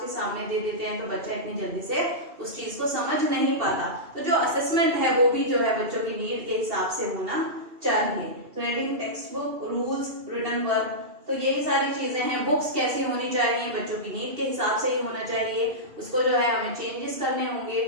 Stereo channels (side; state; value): left; late; 2.7 ms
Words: सामने दे देते हैं तो बच्चा इतनी जल्दी से उस चीज को समझ नहीं पाता। तो जो असेसमेंट है वो भी जो है बच्चों की नीड के हिसाब से होना चाहिए। तो reading text book, rules, written work, तो यही सारी चीजें हैं। बुक्स कैसी होनी चाहिए, बच्चों की नीड के हिसाब से ही होना चाहिए, उसको जो है हमें चेंजेस करने होंगे।